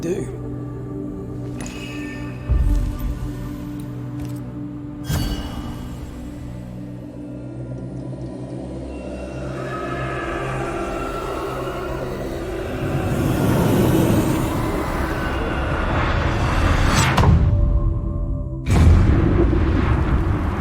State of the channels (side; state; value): both; identical; correlation 1.00